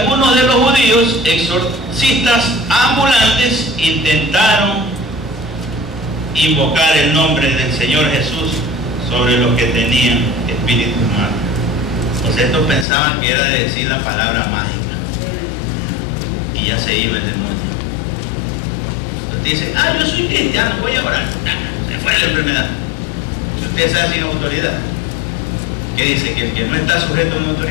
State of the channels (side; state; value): right; drops out; at 12.9 s